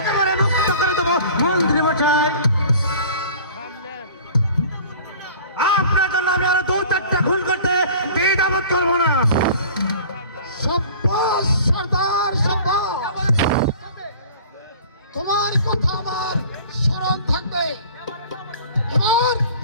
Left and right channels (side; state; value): both; inverted; correlation -0.44